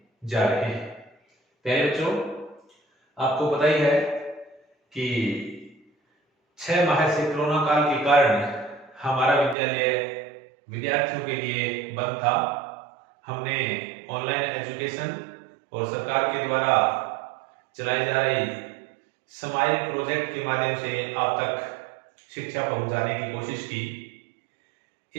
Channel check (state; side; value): drops out; left; at 9.6 s